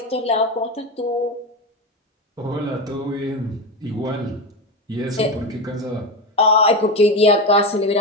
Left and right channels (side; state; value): both; normal; correlation 0.18